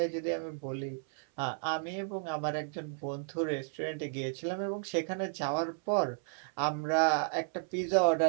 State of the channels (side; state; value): left; silent; 56 dB below the other